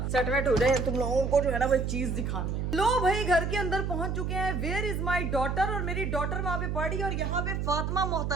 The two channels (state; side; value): noise; right; hum, 1 dB below the sound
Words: सेट वेट हो जाए, तुम लोगों को जो है ना वो चीज दिखानी है। लो भाई घर के अंदर पहुंच चुके हैं। वेयर इज माई डॉटर, और मेरी डॉटर वहाँ पे पढ़ी और यहाँ पे फातिमा